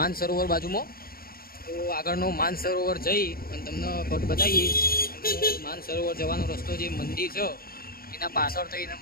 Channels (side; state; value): right; late; 0.43 ms